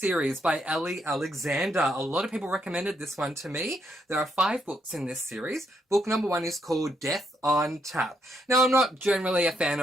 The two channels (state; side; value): normal; both; correlation 0.77